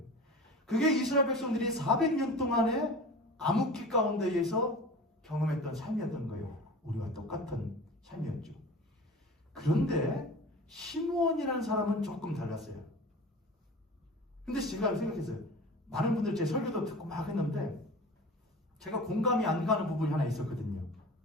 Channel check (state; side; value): normal; both; correlation 0.37